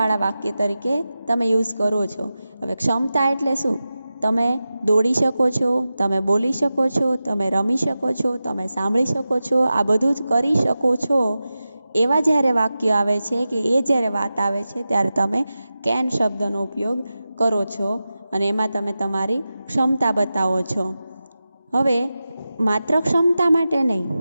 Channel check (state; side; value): inverted; both; correlation -0.94